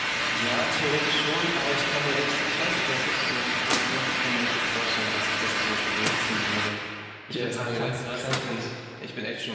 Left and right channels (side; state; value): both; identical; correlation 1.00